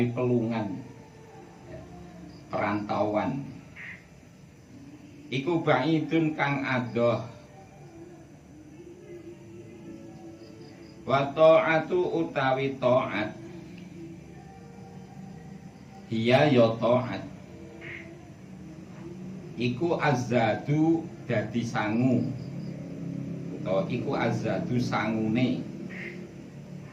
pelungan, perantauan iku ba'idun kang adoh. Wa ta'atu utawi ta'at hiya ya ta'at iku azadu dadi sangu, atau iku azadu sangune.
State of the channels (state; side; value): identical; both; correlation 1.00